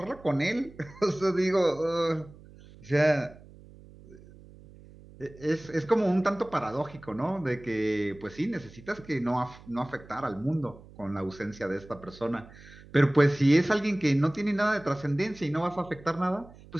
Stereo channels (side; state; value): right; noise; hum, 21 dB below the sound